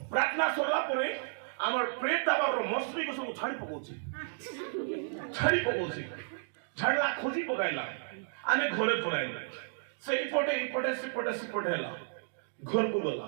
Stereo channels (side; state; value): left; silent; digital silence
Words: ପ୍ରାର୍ଥନା ସରିଲା ପରେ আমার প্রেত দাবার মশলিকে সব ছাড়ি পকাউছি, ছাড়লা খোঁজি পকাইলা। আমি ঘরে পড়াইলা, সেইপটে এইপটে সেপটে হেলা। ঘরকু